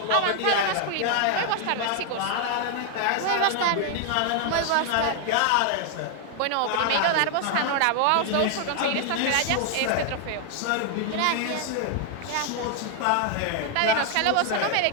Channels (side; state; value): both; different; correlation 0.00